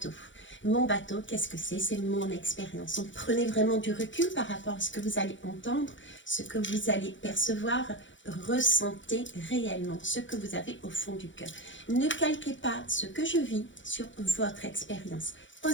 Mon bateau, qu'est-ce que c'est? C'est mon expérience. Donc prenez vraiment du recul par rapport à ce que vous allez entendre, ce que vous allez percevoir, ressentez réellement ce que vous avez au fond du cœur. Ne calquez pas ce que je vis sur votre expérience.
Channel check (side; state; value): right; late; 0.55 ms